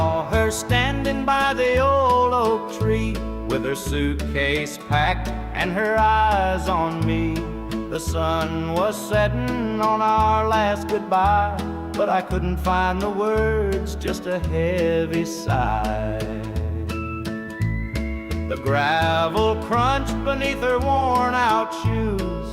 her standing by the old oak tree, with her suitcase packed and her eyes on me. The sun was setting on our last goodbye, but I couldn't find the words, just a heavy sigh. The gravel crunched beneath her worn-out shoes.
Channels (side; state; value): both; identical; correlation 1.00